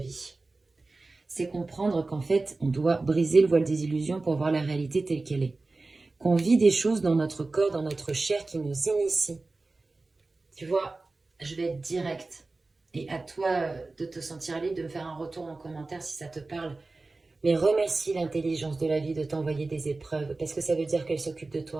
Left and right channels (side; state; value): left; quieter; 3.4 dB